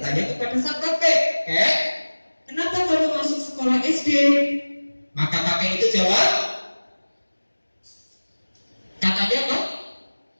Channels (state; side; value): inverted; both; correlation -1.00